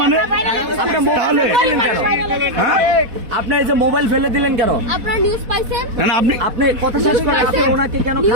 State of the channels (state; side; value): late; left; 4.1 ms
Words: মানে তাহলে হ্যাঁ আপনি এই যে মোবাইল ফেলে দিলেন কেন? আপনারা নিউজ পাইছেন? না না আপনি আপনি কথা শেষ করে আপনি ওনাকে কেন